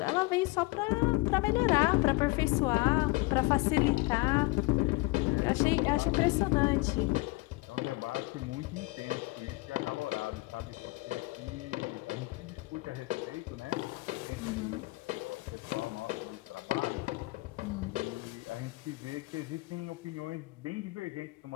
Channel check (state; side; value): quieter; right; 23.3 dB